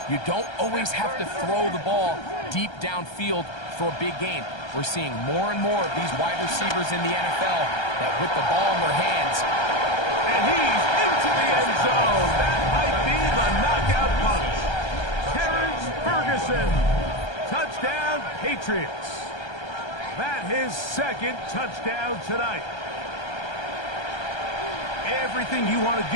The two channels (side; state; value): right; late; 1.3 ms